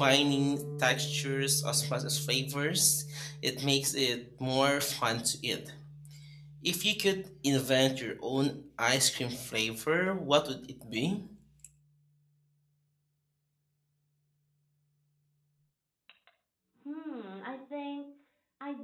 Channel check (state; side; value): identical; both; correlation 1.00